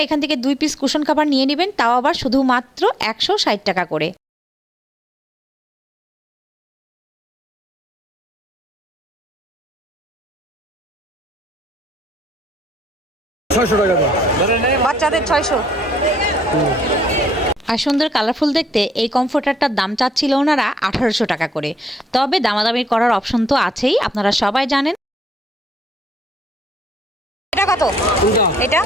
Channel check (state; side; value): normal; both; correlation 0.72